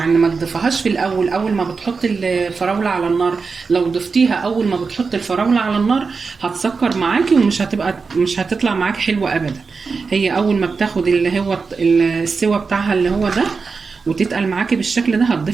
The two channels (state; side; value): quieter; left; 4.8 dB